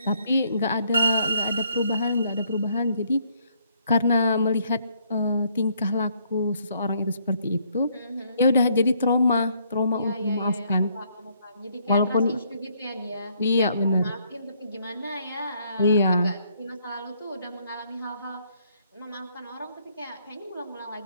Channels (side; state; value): both; inverted; correlation -0.69